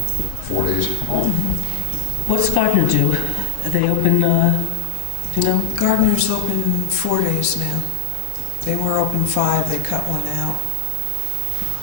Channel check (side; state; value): both; different; correlation 0.00